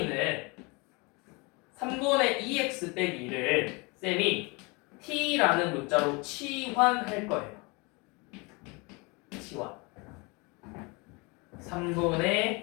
3분의 2x 빼기 2를 쌤이 t라는 문자로 치환할 거예요. 치환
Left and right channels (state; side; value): quieter; right; 28.0 dB